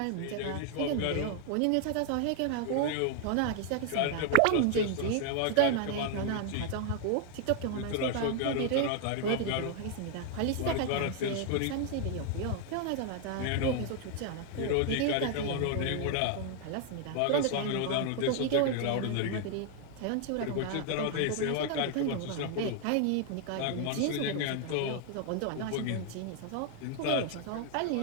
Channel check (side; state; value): both; different; correlation 0.00